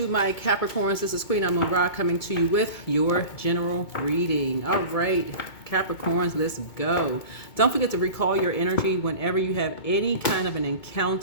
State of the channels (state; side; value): late; right; 2.2 ms